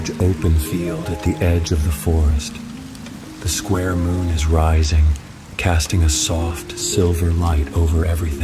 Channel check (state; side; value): identical; both; correlation 1.00